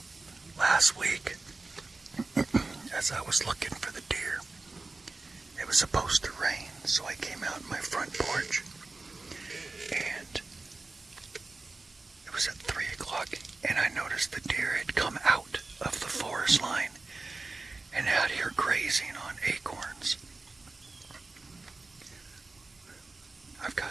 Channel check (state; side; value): quieter; left; 3.4 dB